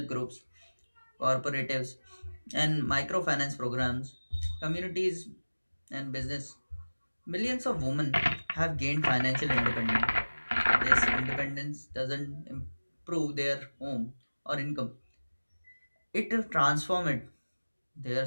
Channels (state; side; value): inverted; both; correlation -1.00